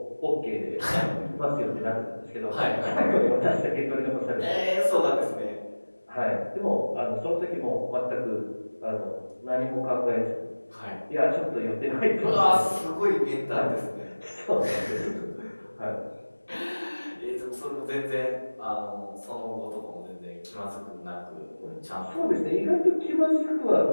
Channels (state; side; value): inverted; both; correlation -1.00